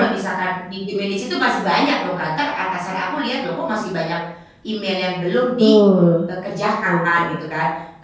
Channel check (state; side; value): identical; both; correlation 1.00